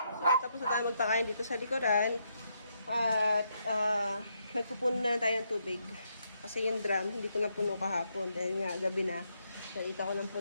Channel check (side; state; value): both; inverted; correlation -0.78